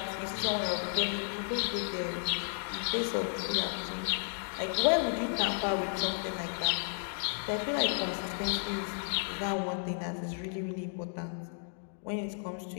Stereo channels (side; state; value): right; silent; digital silence